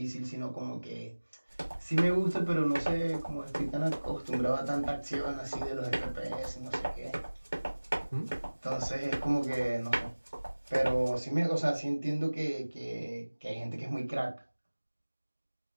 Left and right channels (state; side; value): inverted; both; correlation -1.00